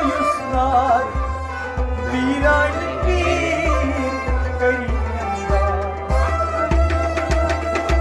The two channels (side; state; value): both; identical; correlation 1.00